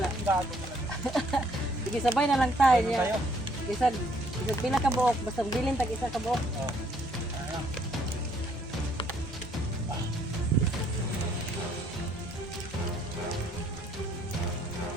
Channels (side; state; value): both; normal; correlation 0.66